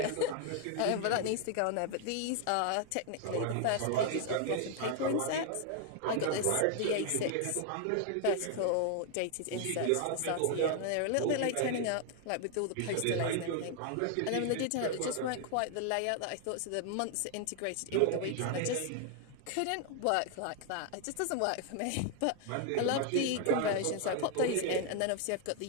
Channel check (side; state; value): both; different; correlation 0.00